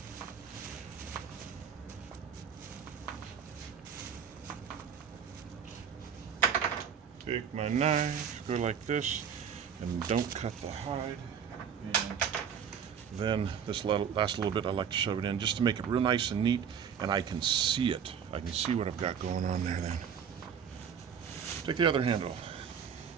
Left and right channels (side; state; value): left; quieter; 7.6 dB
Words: Take my knife, go like this, and don't cut the hide. And then this last little bit, I like to shove it in just to make it real nice and neat, and I can see it. I can see what I've got going on there then. Take the other handle.